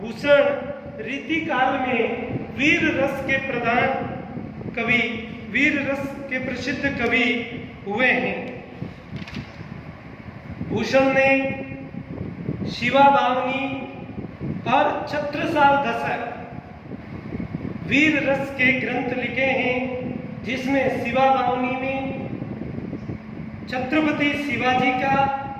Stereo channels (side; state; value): both; identical; correlation 1.00